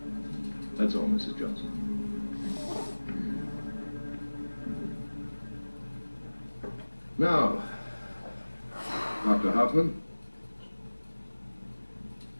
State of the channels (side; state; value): both; inverted; correlation -1.00